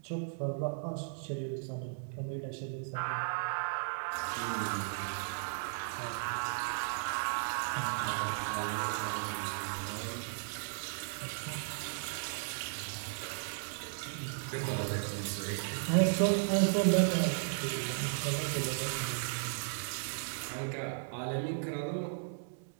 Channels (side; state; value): left; silent; 54 dB below the other